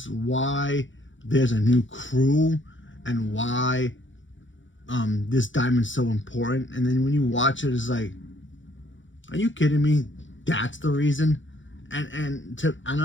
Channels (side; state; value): right; late; 0.55 ms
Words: why there's a new crew and why this diamond's so important. And then when you watch it, it's like, are you kidding me? That's the reason? And